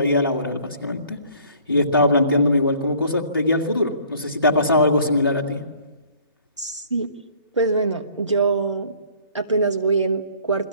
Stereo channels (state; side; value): inverted; both; correlation -0.56